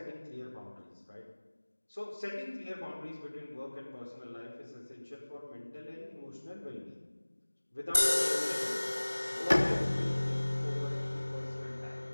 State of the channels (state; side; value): inverted; both; correlation -1.00